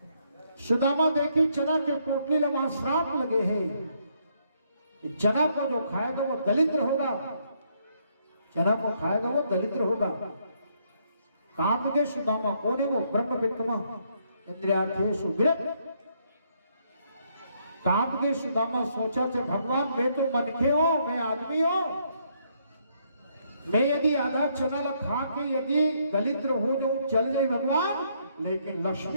सुदामा देखी चना के पोटली ला वहां श्राप लगे हैं, चना को जो खाएगा वो दलिद्र होगा, चना को खाएगा वो दलिद्र होगा। काम के सुदामा कौन है? वो ब्रह्म विद्वान, इंद्रियार्थेषु विरक्त। काम के सुदामा सोचा थे, भगवान मैं तो मनखे हो, मैं आदमी हो, मैं यदि आधा चना खा के यदि दलिद्र हो जो चल जाए भगवान, लेकिन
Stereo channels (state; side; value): inverted; both; correlation -0.72